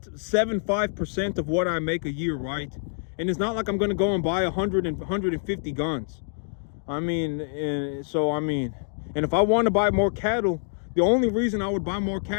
of what I make a year, right? And it's not like I'm gonna go and buy 150 guns. And if I want to buy more cattle, the only reason I would buy more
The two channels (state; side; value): silent; right; digital silence